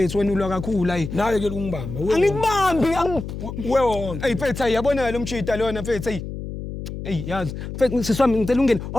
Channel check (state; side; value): noise; left; hum, 8 dB below the sound